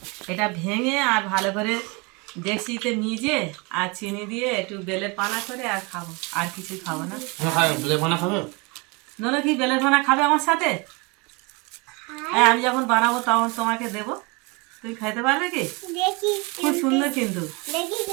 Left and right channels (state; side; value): quieter; left; 28.5 dB